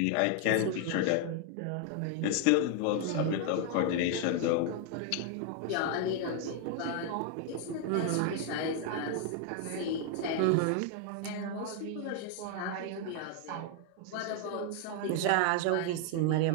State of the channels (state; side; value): different; both; correlation 0.00